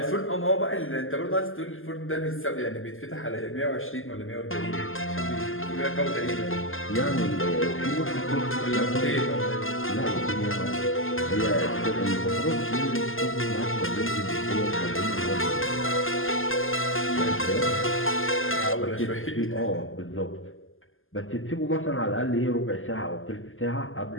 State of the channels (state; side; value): late; right; 0.59 ms